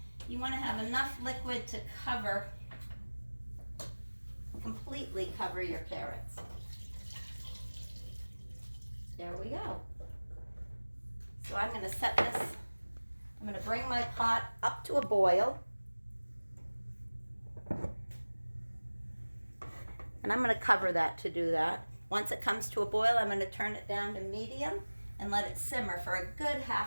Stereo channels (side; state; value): both; inverted; correlation -1.00